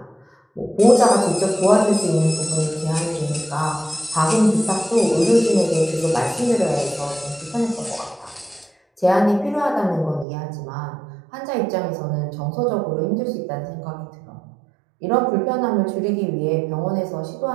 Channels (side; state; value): left; drops out; at 10.2 s